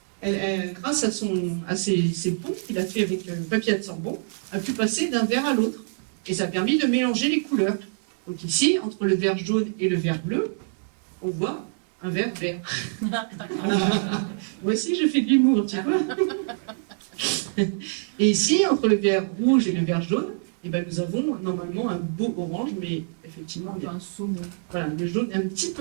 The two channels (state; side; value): silent; left; digital silence